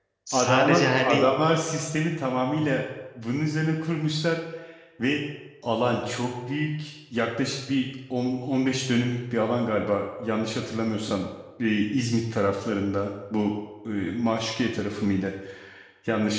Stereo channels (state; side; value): identical; both; correlation 1.00